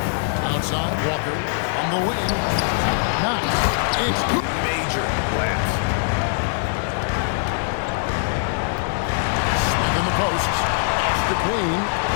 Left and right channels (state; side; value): silent; right; digital silence